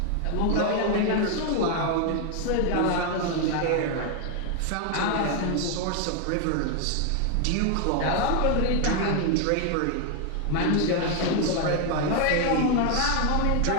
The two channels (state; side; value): different; both; correlation 0.00